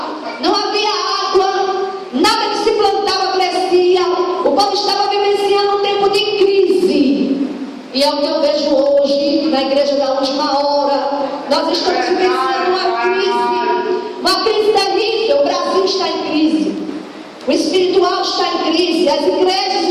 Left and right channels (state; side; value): identical; both; correlation 1.00